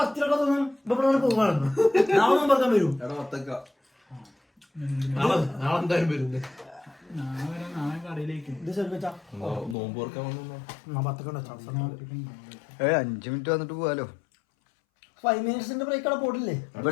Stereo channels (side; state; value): right; drops out; at 9.8 s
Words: തോന്നും ഇവിടെ പോകാണ്. നാളെ പറയാൻ വരും. നാളെ എന്തായാലും വരുന്നത്. ഇത് ശ്രമിച്ചാ നോമ്പ് ഓർക്കാൻ വന്നോ? 5 മിനിറ്റ് വന്നിട്ട് പോവാലോ. 5 മിനിറ്റ്സിന്റെ ബ്രേക്ക് അവിടെ പോട്ടില്ലേ?